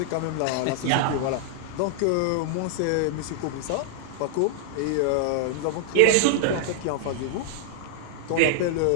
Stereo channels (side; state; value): both; different; correlation -0.01